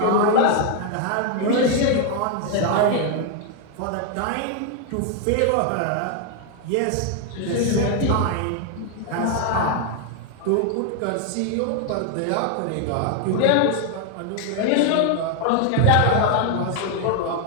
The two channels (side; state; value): both; different; correlation 0.00